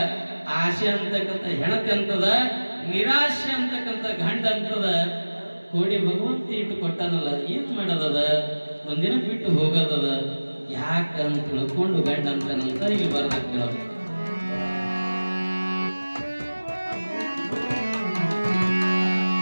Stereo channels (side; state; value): both; inverted; correlation -1.00